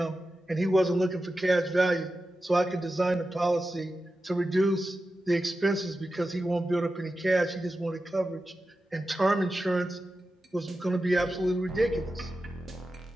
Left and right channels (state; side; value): normal; both; correlation 0.92